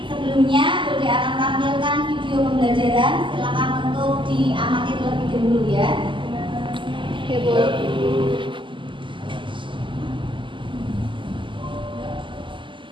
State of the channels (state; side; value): late; left; 0.24 ms